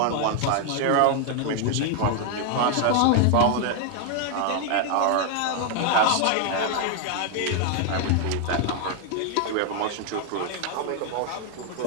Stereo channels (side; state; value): both; different; correlation 0.00